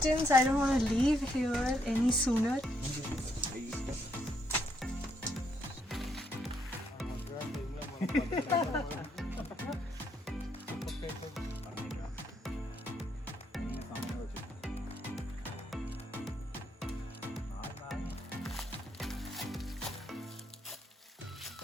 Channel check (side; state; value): both; normal; correlation 0.74